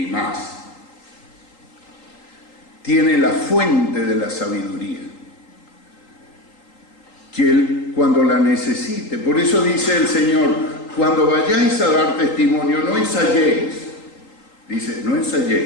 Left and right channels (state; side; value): late; right; 3.8 ms